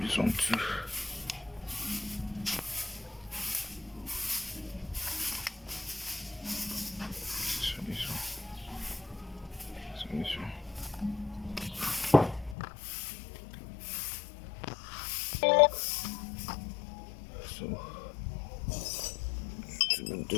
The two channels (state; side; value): drops out; right; at 12.6 s